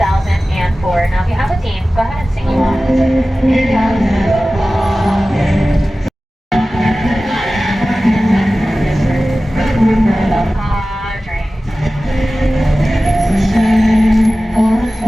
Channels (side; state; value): both; normal; correlation 0.96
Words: Now, if you have a team, go ahead and sing you